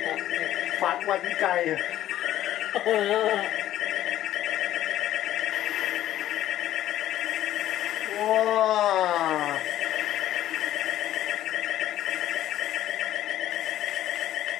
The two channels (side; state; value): right; quieter; 13.0 dB